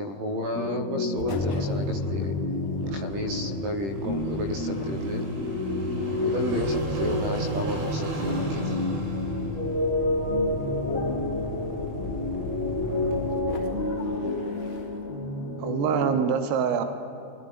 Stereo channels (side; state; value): left; late; 20 ms